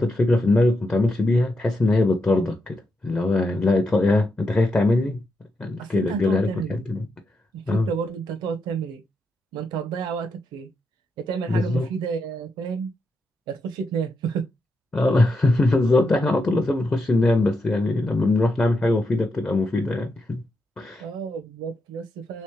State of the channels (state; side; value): normal; both; correlation 0.84